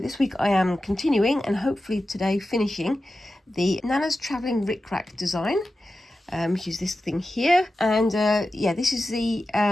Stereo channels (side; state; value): both; normal; correlation 0.93